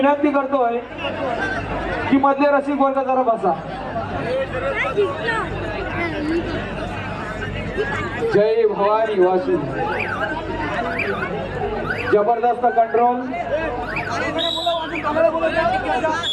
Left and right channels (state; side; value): identical; both; correlation 1.00